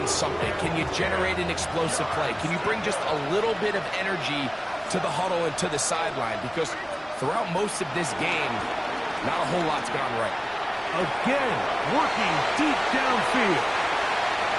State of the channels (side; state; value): both; identical; correlation 1.00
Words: something. Can you generate an explosive play? Can you bring just a little bit of energy to the huddle and to the sideline? Because throughout most of this game, not a whole lot's gone right. Again, working deep downfield.